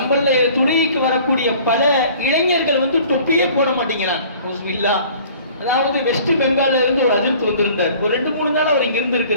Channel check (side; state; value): both; inverted; correlation -0.50